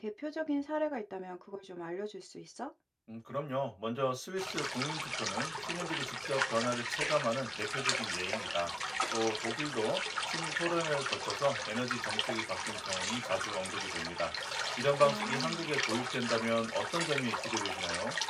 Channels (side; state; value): both; identical; correlation 1.00